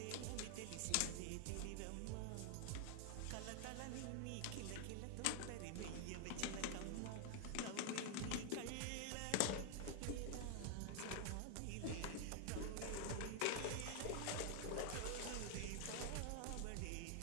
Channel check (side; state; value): both; different; correlation 0.00